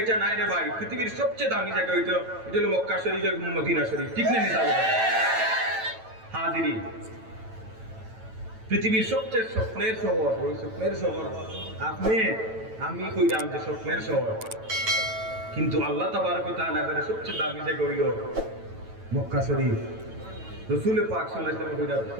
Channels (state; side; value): late; left; 9.1 ms